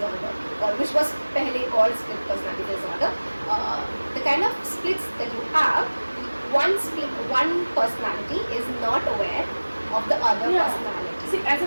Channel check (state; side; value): inverted; both; correlation -1.00